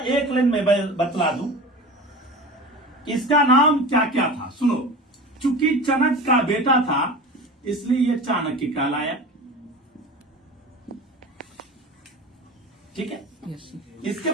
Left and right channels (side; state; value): both; normal; correlation 0.33